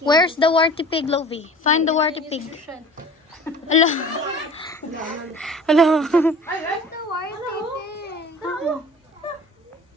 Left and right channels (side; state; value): both; normal; correlation 0.43